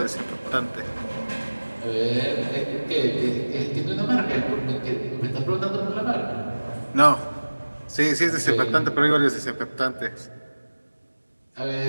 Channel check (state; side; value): inverted; both; correlation -1.00